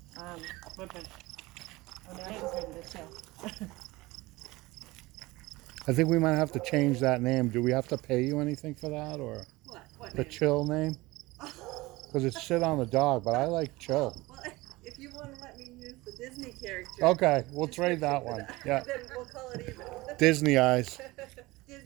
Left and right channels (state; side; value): quieter; left; 20.9 dB